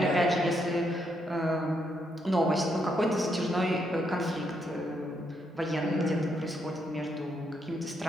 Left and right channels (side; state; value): both; normal; correlation 0.77